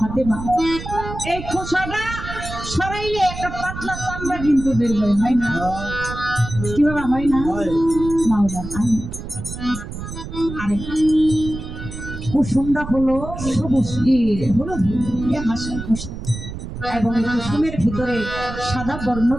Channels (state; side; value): noise; right; rumble, 9 dB below the sound